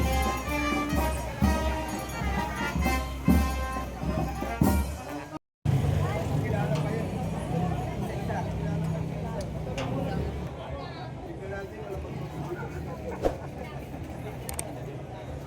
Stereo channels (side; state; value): both; identical; correlation 1.00